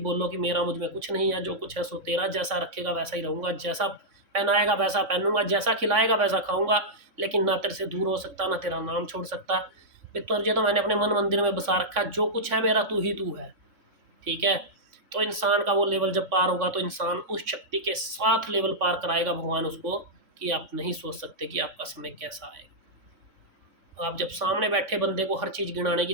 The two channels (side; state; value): left; late; 3.5 ms